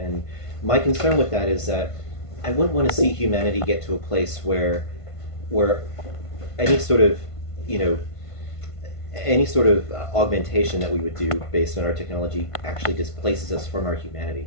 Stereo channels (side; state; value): right; late; 1.5 ms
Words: my concern with that is that I wouldn't want to see humanity get to a place where any sort of any sort of augmentation that we would do based on our technology actually displaces us from our humanity